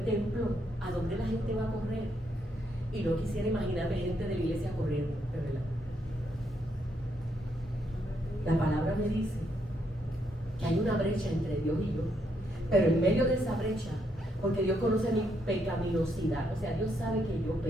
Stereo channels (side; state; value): both; normal; correlation 0.76